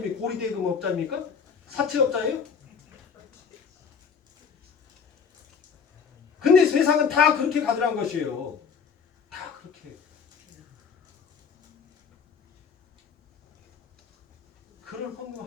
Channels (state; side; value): quieter; right; 6.3 dB